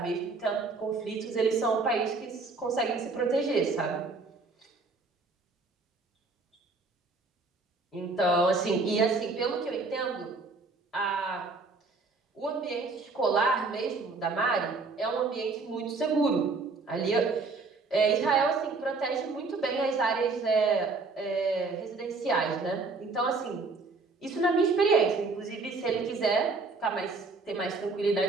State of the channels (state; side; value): quieter; left; 3.9 dB